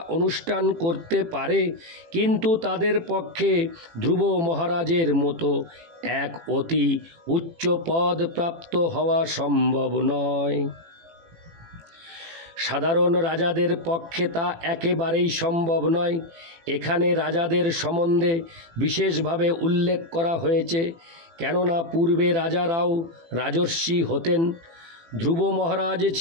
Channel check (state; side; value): late; left; 18 ms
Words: অনুষ্ঠান করতে পারে, কিন্তু তাদের পক্ষে ধ্রুব মহারাজের মতো এক অতি উচ্চ পদ প্রাপ্ত হওয়া সম্ভব নয়। সাধারণ রাজাদের পক্ষে তা একেবারেই সম্ভব নয়। এখানে রাজাদের সম্বন্ধে বিশেষভাবে উল্লেখ করা হয়েছে, কেননা পূর্বে রাজারাও রাজর্ষি হতেন। ধ্রুব মহারাজ